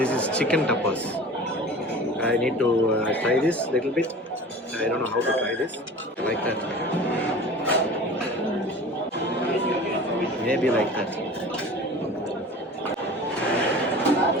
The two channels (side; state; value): both; normal; correlation 0.39